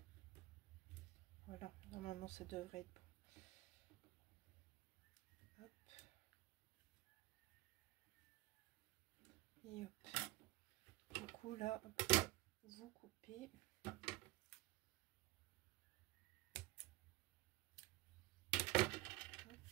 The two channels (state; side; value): quieter; left; 19.5 dB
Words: Voilà, normalement ça devrait être bon. Hop. Et hop. Du coup là, vous coupez. Hop.